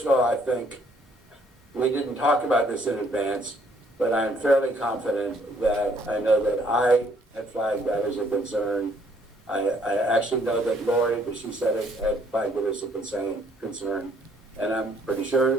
of all, I think, we didn't talk about this in advance, but I'm fairly confident that I know that I had flagged that as a concern. I actually know that Lori, but she said it, had flagged it as a concern, and I'm pretty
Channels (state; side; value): normal; both; correlation 0.65